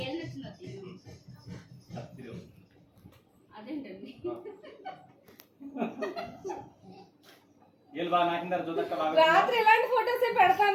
అదేంటండి రాత్రి ఇలాంటి ఫోటోస్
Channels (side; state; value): both; identical; correlation 1.00